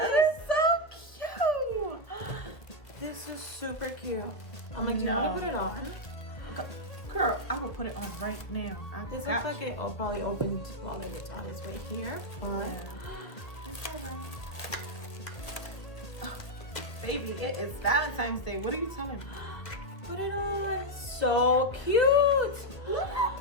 is so cute. This is super cute. I'm like, do you want to put it on? Girl, I will put it on right now. This looks like it probably opened while it's on its way here. But that's alright. Baby, it is Valentine's Day. What are you telling me? Put it on. So cute. Look at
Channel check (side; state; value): right; late; 1.6 ms